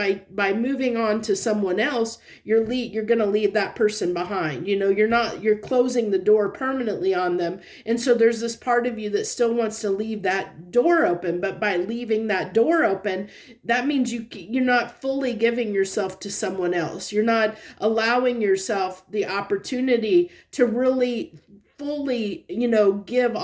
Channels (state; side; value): identical; both; correlation 1.00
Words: moving on to someone else, you're going to leave that person behind. You're closing the door permanently on them. And so there's this part of you that still wants to leave that door open, but by leaving that door open, that means you're not fully giving yourself to someone else. You're not allowing yourself the opportunity to really fully, give